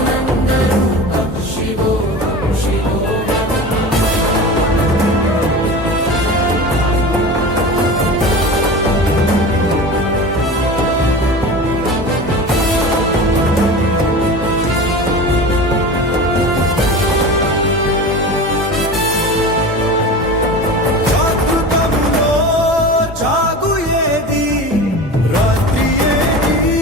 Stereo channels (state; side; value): normal; both; correlation 0.32